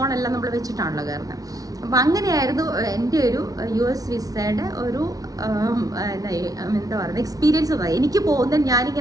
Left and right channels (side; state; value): left; late; 0.18 ms